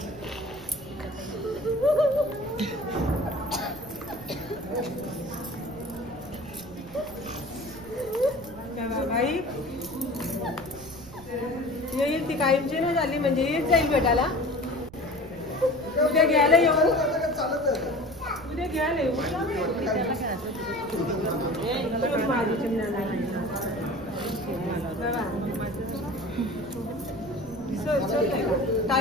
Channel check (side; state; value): right; noise; rumble, 19 dB below the sound